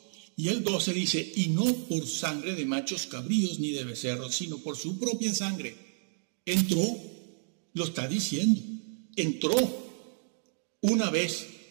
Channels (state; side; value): silent; left; digital silence